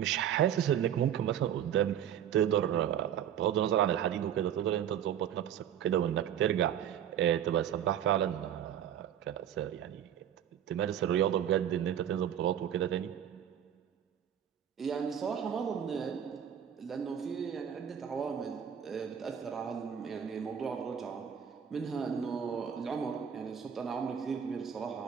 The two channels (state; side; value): quieter; left; 9.5 dB